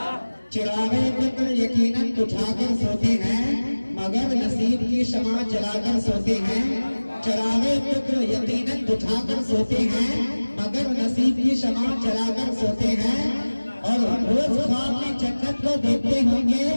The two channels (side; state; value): both; inverted; correlation -1.00